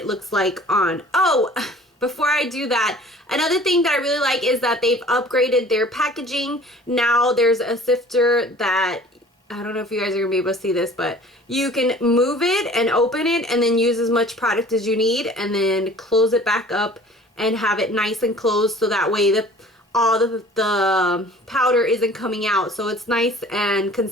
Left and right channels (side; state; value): both; normal; correlation 0.48